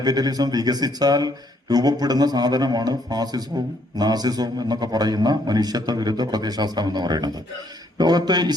വികസിച്ചാൽ രൂപപ്പെടുന്ന സാധനമാണ് ഫാസിസവും നാസിസവും എന്നൊക്കെ പറയുന്ന മനുഷ്യത്വ വിരുദ്ധ പ്രത്യയശാസ്ത്രം എന്ന് പറയുന്നത്. ലോകത്ത്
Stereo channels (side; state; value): both; normal; correlation 0.69